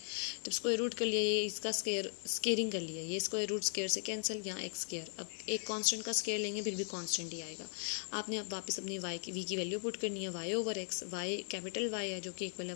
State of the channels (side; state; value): right; silent; 52 dB below the other